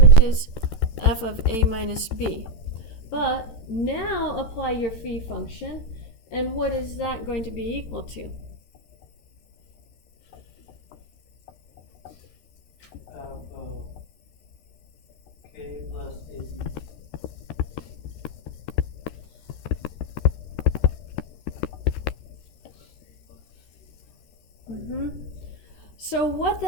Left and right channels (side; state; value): right; late; 13 ms